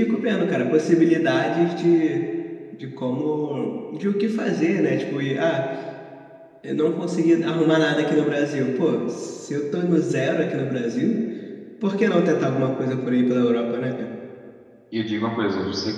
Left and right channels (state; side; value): identical; both; correlation 1.00